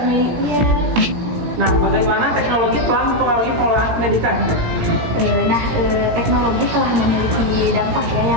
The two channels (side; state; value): left; late; 17 ms